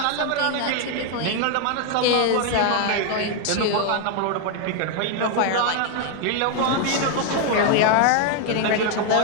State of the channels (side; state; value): both; different; correlation 0.00